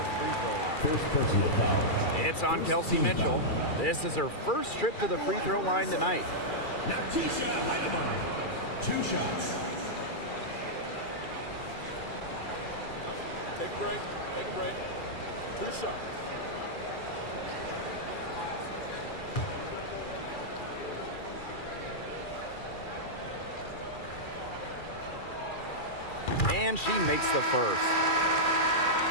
free throw line. First personal foul. It's on Kelsey Mitchell. This is her first trip to the free throw line tonight. Natisha Heidemann. 2 shots. Take a break. Take a break. 2 shots. And she makes the first.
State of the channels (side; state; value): right; late; 2.4 ms